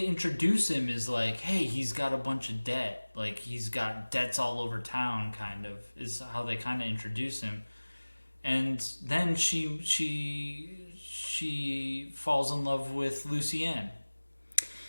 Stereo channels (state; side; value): inverted; both; correlation -1.00